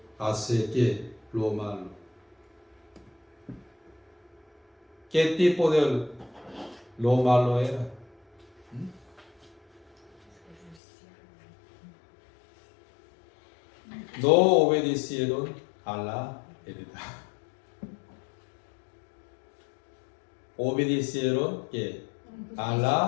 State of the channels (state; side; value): drops out; right; at 10.8 s